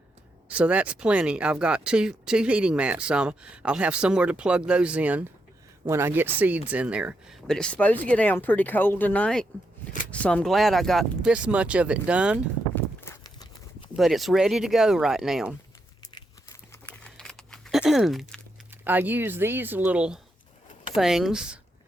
So that's plenty. I've got two heating mats. I'll have somewhere to plug those in when I get seeds in there. But it's supposed to get down pretty cold tonight, so I'm glad I got this much of it done. But it's ready to go right now. I use these little things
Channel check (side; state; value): both; normal; correlation 0.82